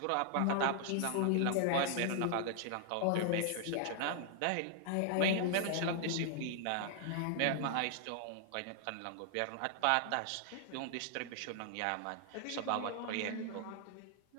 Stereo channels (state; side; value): different; both; correlation 0.00